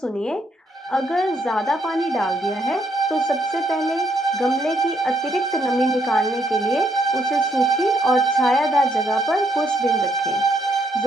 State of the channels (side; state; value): both; normal; correlation 0.73